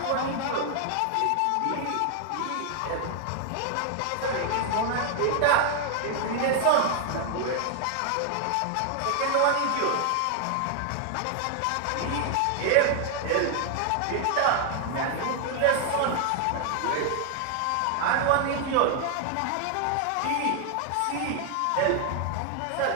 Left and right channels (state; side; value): different; both; correlation 0.00